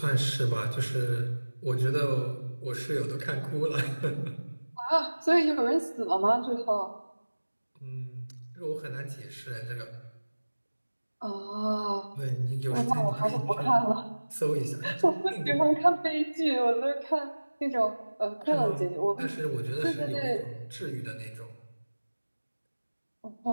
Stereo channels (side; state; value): both; inverted; correlation -1.00